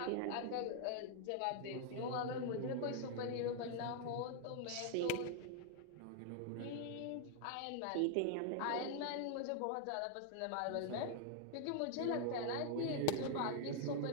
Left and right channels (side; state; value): both; different; correlation 0.00